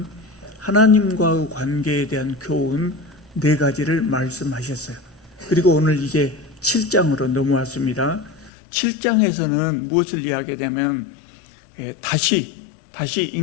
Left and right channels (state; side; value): drops out; right; at 8.5 s